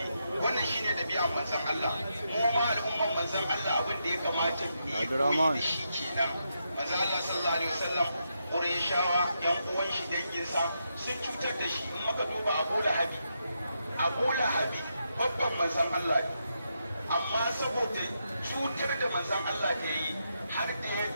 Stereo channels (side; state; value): both; inverted; correlation -0.83